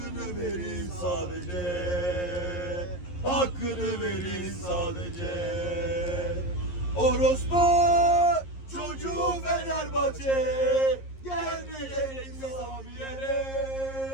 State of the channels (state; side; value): late; right; 11 ms